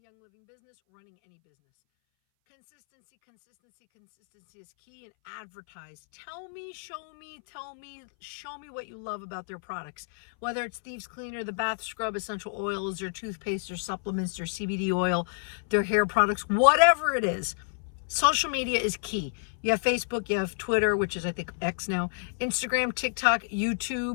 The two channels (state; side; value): silent; right; 59 dB below the other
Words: Living business, running any business. Consistency, consistency, consistency is key, and advertise. Tell me, show me, show me what you love about their products. Whether it's Thieves Cleaner, the bath scrub, essential oils, their toothpaste, their supplements, their CBD oil, their hair products, whatever it is. Social media is key. You have Facebook, you have Twitter, which is I think X now, Instagram, TikTok,